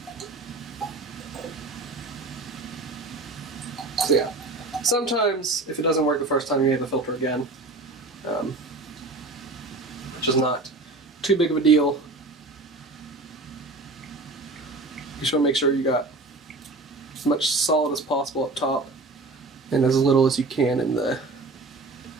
So yeah, sometimes if it doesn't work the first time, you may have to filter again, which is not too big of a deal. You just want to make sure you got as much solid as possible up top and as little as you can in the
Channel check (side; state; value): left; quieter; 3.2 dB